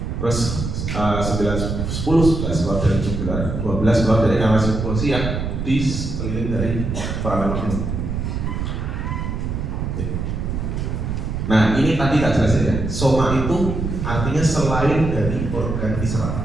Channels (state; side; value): noise; right; rumble, 3 dB below the sound